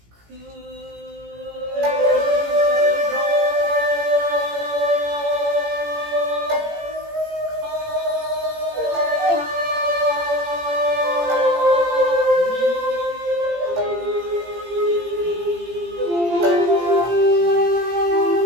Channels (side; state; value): left; late; 17 ms